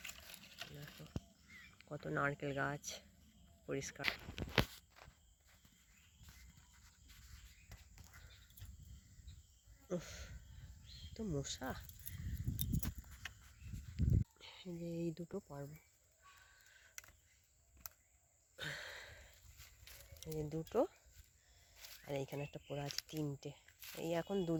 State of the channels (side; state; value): both; identical; correlation 1.00